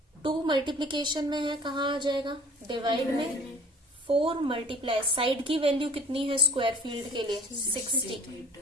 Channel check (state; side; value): normal; both; correlation 0.48